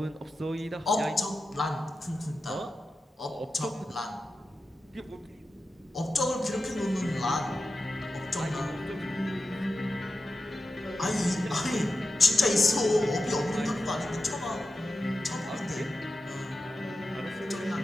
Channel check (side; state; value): both; normal; correlation 0.92